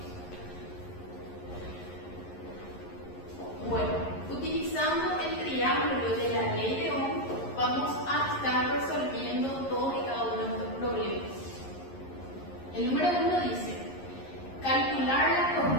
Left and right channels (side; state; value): right; late; 11 ms